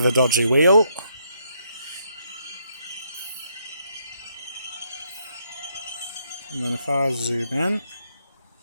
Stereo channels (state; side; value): inverted; both; correlation -0.75